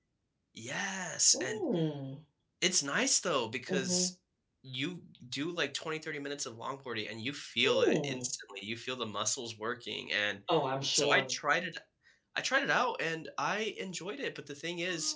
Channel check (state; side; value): identical; both; correlation 1.00